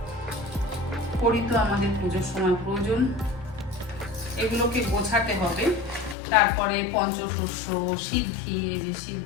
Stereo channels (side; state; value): right; drops out; at 6.2 s